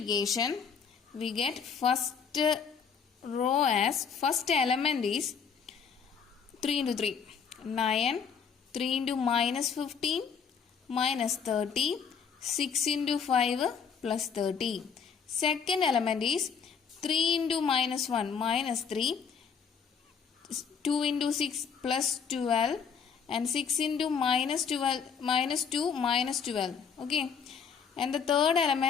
we get first row as first element is 3 into 3 9, 3 into minus 15 minus 30, 6 into 5 plus 30. Second element is 3 into minus 1 minus 3, 2 into 6 plus 12 and 6 into minus 12 minus 2 minus 12. Okay, and the third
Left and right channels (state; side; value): quieter; right; 6.6 dB